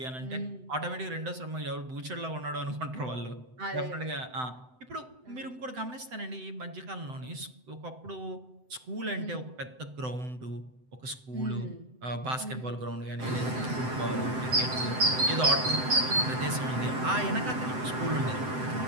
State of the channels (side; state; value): left; late; 7.8 ms